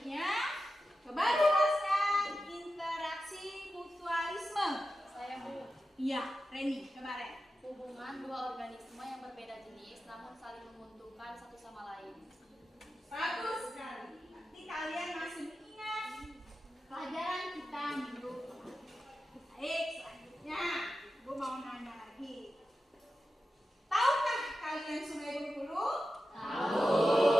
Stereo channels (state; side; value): normal; both; correlation 0.92